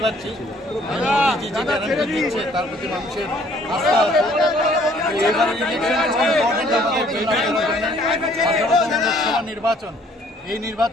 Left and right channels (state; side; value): normal; both; correlation 0.60